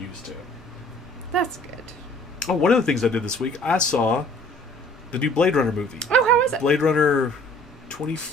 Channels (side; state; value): both; normal; correlation 0.55